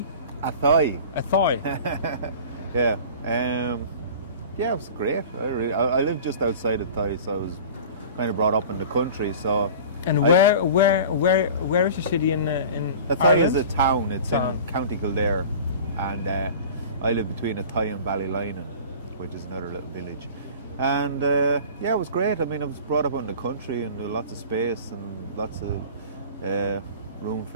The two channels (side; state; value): both; inverted; correlation -0.40